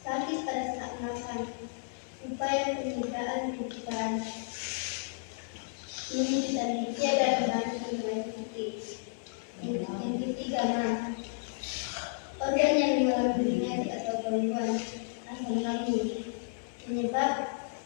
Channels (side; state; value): right; silent; 56 dB below the other